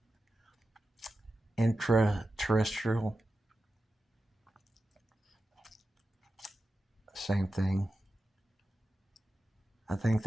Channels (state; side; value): normal; both; correlation 0.92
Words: intraterrestrial. Same thing. I think